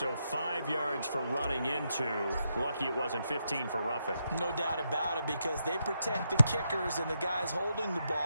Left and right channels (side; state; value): both; inverted; correlation -0.82